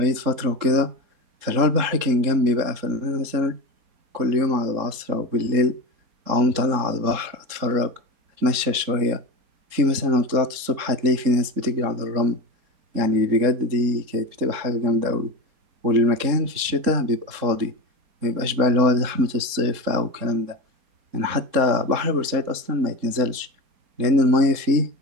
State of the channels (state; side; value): late; left; 3.7 ms